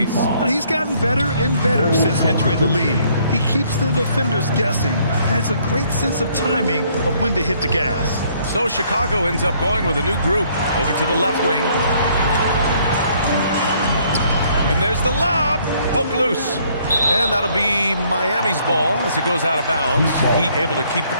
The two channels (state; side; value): inverted; both; correlation -0.64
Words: He's gotten better and better since entering the league. He keeps the defenders guessing. Has a great sense of timing of when to hit the gas. So Chicago ends up going with a new group over to the left wing. And there's the lob. Poke loose. And that'll be Miami's ball as it goes out of bounds. Heat able to keep the